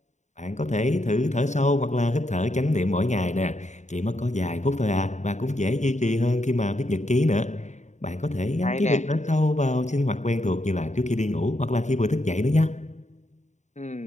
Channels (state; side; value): late; right; 0.34 ms